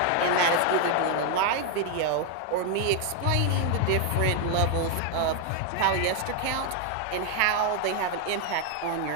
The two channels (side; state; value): both; different; correlation 0.01